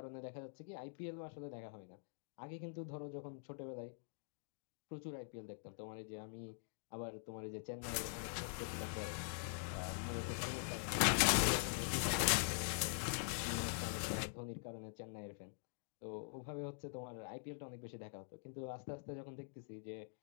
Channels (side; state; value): right; silent; digital silence